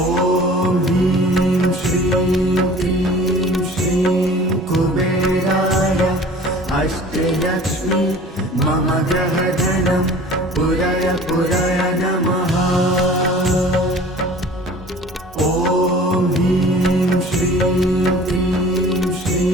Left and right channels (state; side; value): normal; both; correlation 0.45